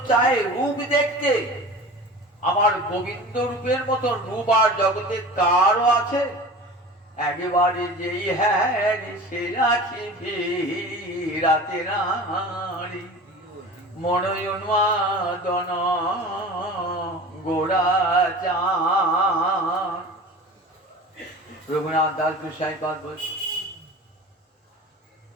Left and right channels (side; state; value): both; normal; correlation 0.37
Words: চায় রূপ দেখতে, আমার গোবিন্দ রূপের মতো রূপ আর জগতে কারও আছে? একেবারে যেই হ্যাঁ সে রাখি রাতে নারী মনোন্মাদন গোড়াচার। রঘুনাথ দাস গোসাই পাদ বলছে,